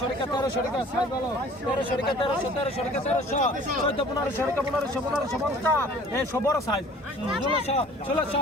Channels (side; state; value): both; normal; correlation 0.49